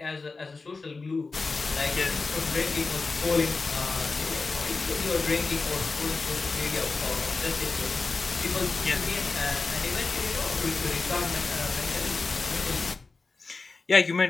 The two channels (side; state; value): right; quieter; 4.0 dB